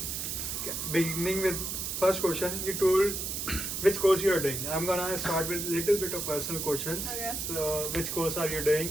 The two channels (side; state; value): right; noise; hiss, 3 dB below the sound